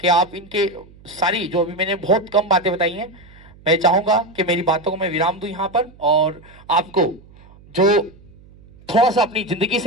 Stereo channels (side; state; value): right; noise; hum, 24 dB below the sound